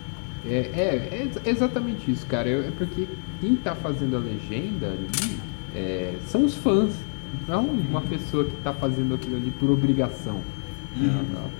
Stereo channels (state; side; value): silent; right; 61 dB below the other